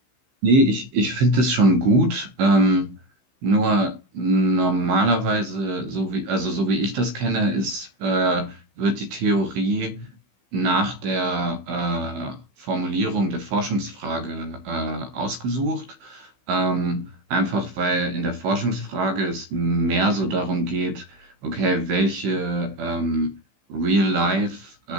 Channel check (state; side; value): late; left; 16 ms